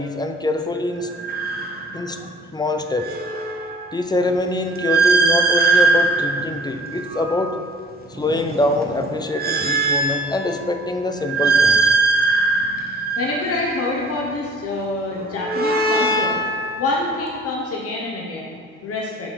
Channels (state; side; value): normal; both; correlation 0.50